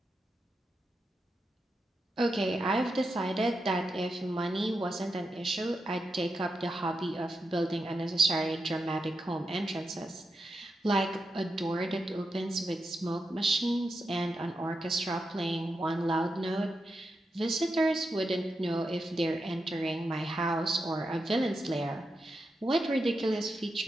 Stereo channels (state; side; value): normal; both; correlation 0.87